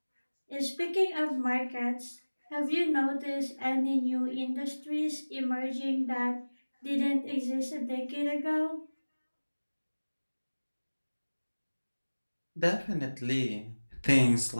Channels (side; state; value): both; inverted; correlation -1.00